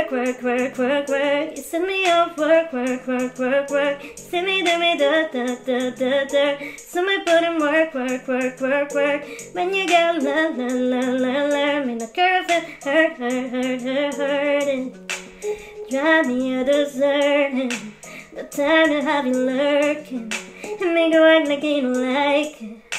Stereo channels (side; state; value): both; identical; correlation 1.00